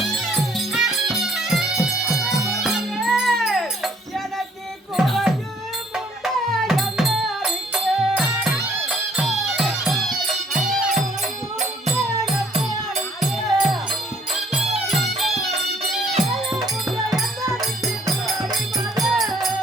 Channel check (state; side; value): normal; both; correlation 0.62